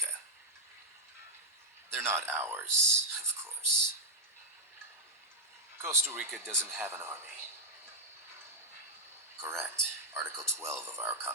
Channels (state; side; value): normal; both; correlation -0.05